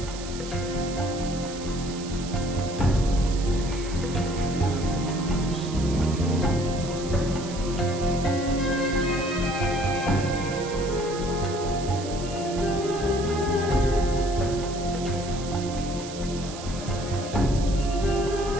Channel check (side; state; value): right; noise; hiss, 13 dB below the sound